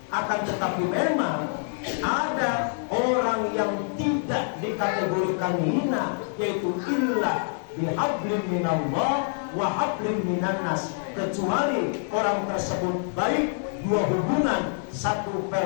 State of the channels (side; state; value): right; silent; 61 dB below the other